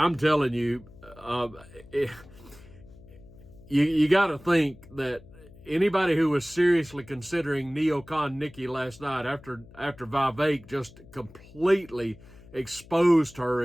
telling you, you got to think that anybody who was seriously considering neocon Nikki last night, after Vivek just completely exposed her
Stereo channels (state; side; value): noise; left; hum, 22 dB below the sound